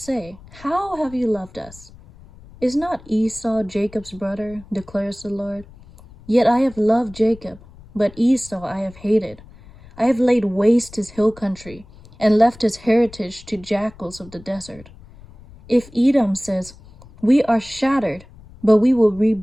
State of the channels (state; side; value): noise; left; rumble, 22 dB below the sound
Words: how have you loved us? Is not Esau Jacob's brother, declares the Lord? Yet I have loved Jacob, but Esau I have hated. I have laid waste his hill country, and left his heritage to jackals of the desert. If Edom says, we are shattered, but we will